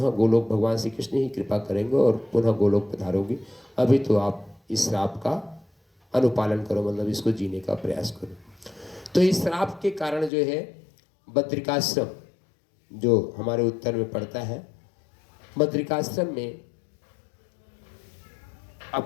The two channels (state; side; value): drops out; right; at 10.3 s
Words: गोलोक भगवान श्री कृष्ण ही कृपा करेंगे और पुनः गोलोक पधारोगी। अभी तो आप इस श्राप का अनुपालन करो, मतलब इसको जीने का प्रयास करो। तो इस श्राप के कारण जो है बद्रिकाश्रम जो हमारे उत्तर में पड़ता है, बद्रिकाश्रम में